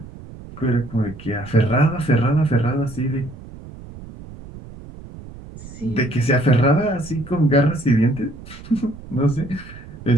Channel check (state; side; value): noise; right; rumble, 16 dB below the sound